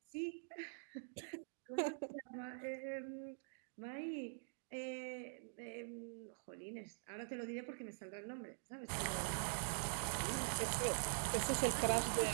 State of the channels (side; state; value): left; silent; digital silence